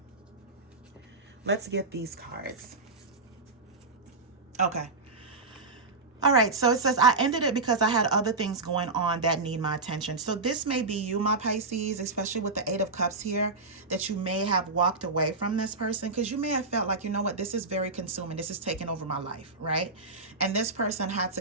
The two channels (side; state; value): left; quieter; 3.6 dB